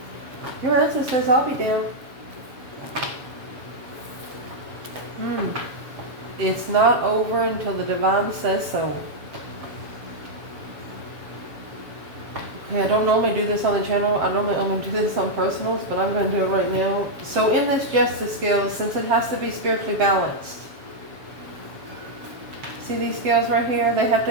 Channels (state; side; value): late; left; 7.2 ms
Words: Your ancestor says, I'll be damned. It's not over until the divine says so. Okay, I don't normally do this on the channel. I normally only do this on personals, but I'm going to do it right now. So in this justice scale, since it has to be spiritually balanced, see these scales right here? They have